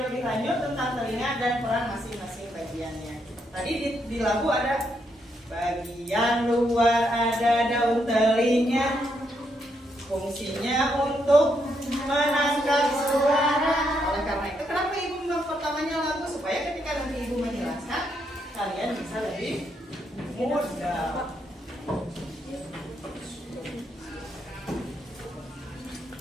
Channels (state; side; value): normal; both; correlation 0.78